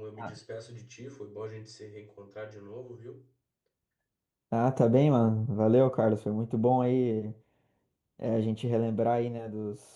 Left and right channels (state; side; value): identical; both; correlation 1.00